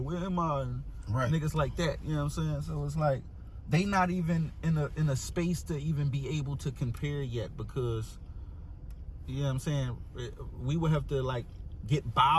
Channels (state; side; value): identical; both; correlation 1.00